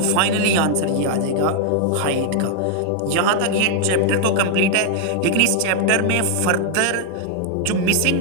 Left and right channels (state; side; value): different; both; correlation 0.00